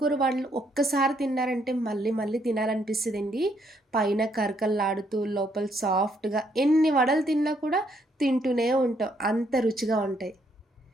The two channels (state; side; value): normal; both; correlation 0.72